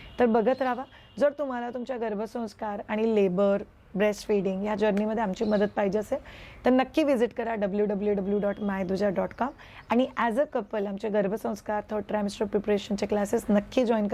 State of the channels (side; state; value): both; identical; correlation 1.00